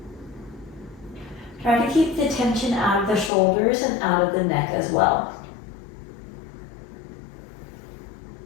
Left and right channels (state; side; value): drops out; right; at 3.3 s